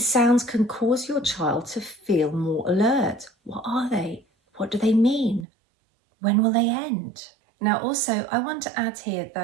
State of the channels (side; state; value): left; drops out; at 5.5 s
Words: sounds can cause your child to feel more alert. What are they? What do they mean? When will they end? Now, also, I want to add here